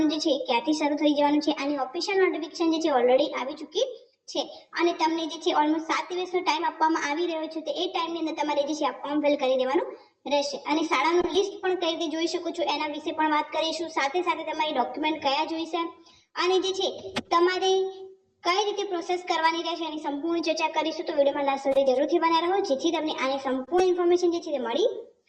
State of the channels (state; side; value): identical; both; correlation 1.00